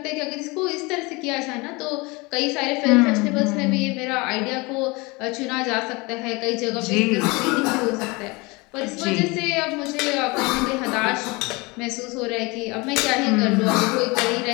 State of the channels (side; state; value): right; quieter; 25.6 dB